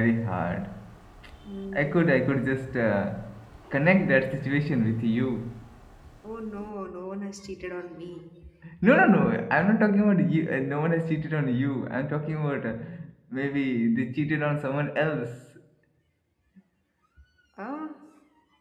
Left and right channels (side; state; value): both; identical; correlation 1.00